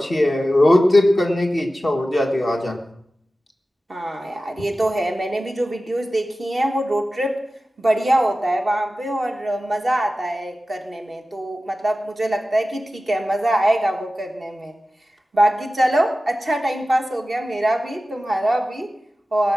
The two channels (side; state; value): both; normal; correlation 0.95